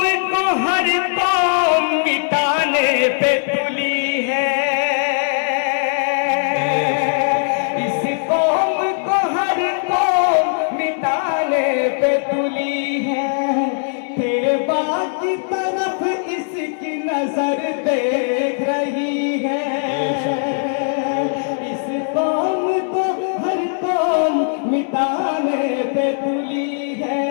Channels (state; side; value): silent; right; digital silence